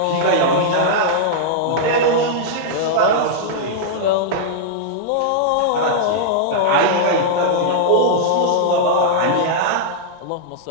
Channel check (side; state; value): both; different; correlation -0.02